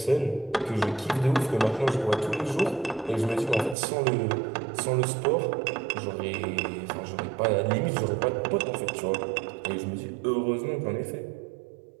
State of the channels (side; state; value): left; drops out; at 3.8 s